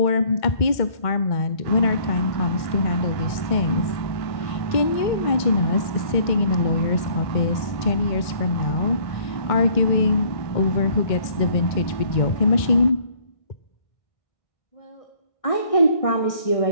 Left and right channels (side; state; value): right; late; 1.6 ms